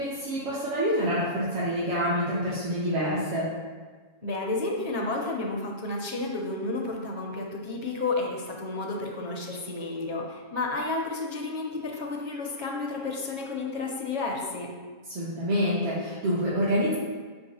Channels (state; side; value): late; left; 7.3 ms